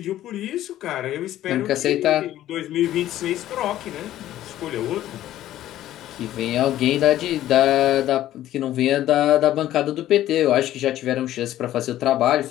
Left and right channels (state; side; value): quieter; right; 13.3 dB